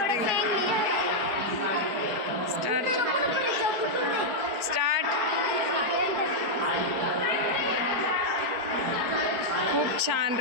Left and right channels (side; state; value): left; late; 4.7 ms